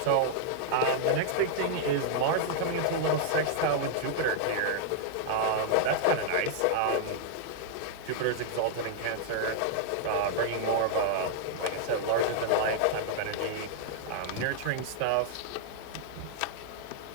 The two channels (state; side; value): different; both; correlation -0.01